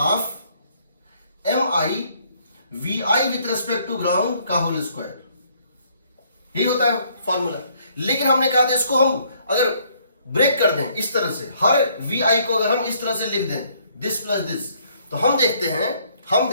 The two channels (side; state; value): both; inverted; correlation -0.65